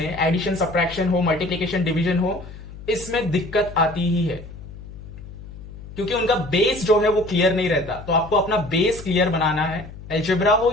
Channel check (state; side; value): noise; left; hum, 14 dB below the sound